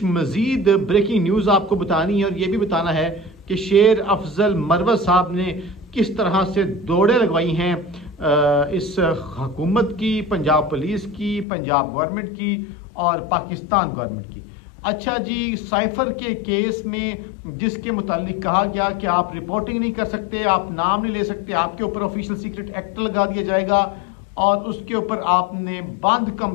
मज़ीद ब्रेकिंग न्यूज़ आपको बतानी है और ये भी बताना है कि शेर अफजल मरवत साहब ने किस तरह से दौड़े लगवाई हैं इस हुकूमत की, पंजाब पुलिस की, पंजाब गवर्नमेंट की और पाकिस्तान गवर्नमेंट की। अच्छा जी, साइफर के केस में जिसके मुतालिक कहा गया कि आप रिपोर्टिंग नहीं कर सकते, आप नाम नहीं ले सकते, आपके ऊपर ऑफिशियल सीक्रेट एक्ट लगा दिया जाएगा और उसके ऊपर आपने बंद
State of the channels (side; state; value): right; drops out; at 11.5 s